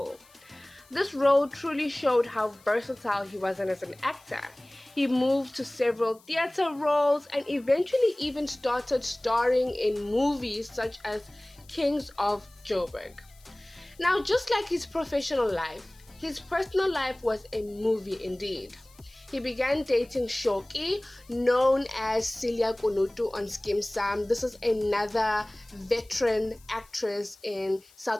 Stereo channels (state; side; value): noise; left; hiss, 27 dB below the sound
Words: This role truly showed how versatile he was as an actor. He moved to several theater roles and eventually even started starring in movies such as Kings of Joburg. Now, just like his professional life, his personal life was a movie indeed. He began dating Shoki, known as Celia Konutu on Skim Sam. This is another veteran actress in